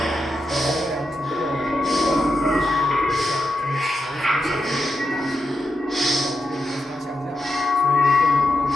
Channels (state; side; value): normal; both; correlation 0.85